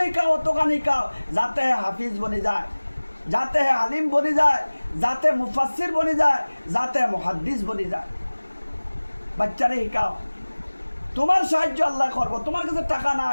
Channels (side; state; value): both; inverted; correlation -1.00